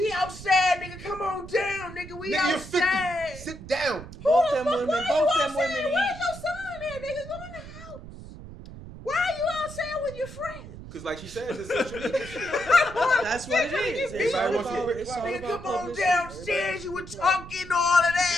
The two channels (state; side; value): noise; right; rumble, 14 dB below the sound